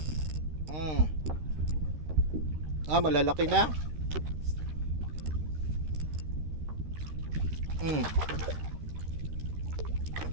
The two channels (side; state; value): left; late; 13 ms